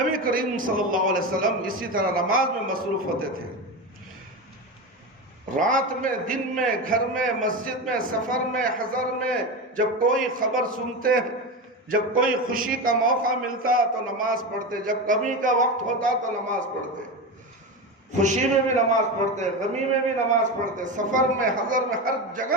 کریم صلی اللہ علیہ وسلم اسی طرح نماز میں مصروف ہوتے تھے۔ رات میں، دن میں، گھر میں، مسجد میں، سفر میں، حضر میں، جب کوئی خبر سنتے، جب کوئی خوشی کا موقع ملتا تو نماز پڑھتے، جب غمی کا وقت ہوتا تو نماز پڑھتے، خوشی میں بھی نماز پڑھتے، غمی میں بھی نماز پڑھتے، سفر میں، حضر میں، ہر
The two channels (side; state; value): both; normal; correlation 0.20